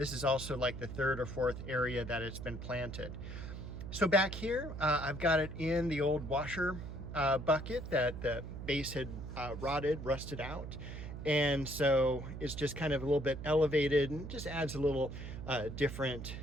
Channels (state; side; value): noise; right; hum, 8 dB below the sound